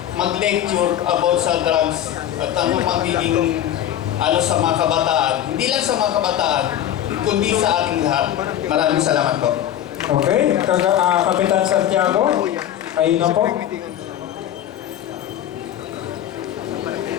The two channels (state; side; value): quieter; right; 11.2 dB